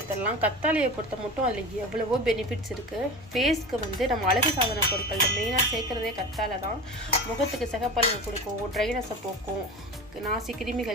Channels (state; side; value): normal; both; correlation 0.30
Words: கத்தாழையை பொறுத்த மட்டும் அதில் எவ்வளவோ பெனிஃபிட்ஸ் இருக்குது. ஃபேஸ்க்கு வந்து நம்ம அழகு சாதன பொருட்களில் மெயினாக சேர்க்குறதே கத்தாழை தான். முகத்துக்கு சிகப்பழகு கொடுக்கும், ட்ரைனஸை போக்கும், நாசி